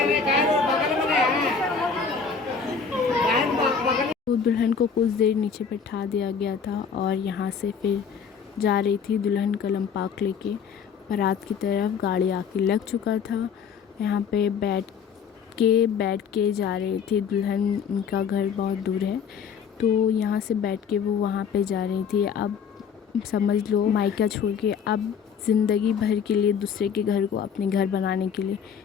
तो दुल्हन को कुछ देर नीचे बैठा दिया गया था, और यहाँ से फिर जा रही थी दुल्हन कलम पाक लेके बारात की तरफ। गाड़ी आके लग चुका था, यहाँ पे बैठ के जा रही थी दुल्हन। उनका घर बहुत दूर है, तो यहाँ से बैठ के वो वहाँ पे जा रही थी। अब समझ लो मायका छोड़ के अब ज़िंदगी भर के लिए दूसरे के घर को अपने घर बनाने के लिए।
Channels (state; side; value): quieter; right; 6.5 dB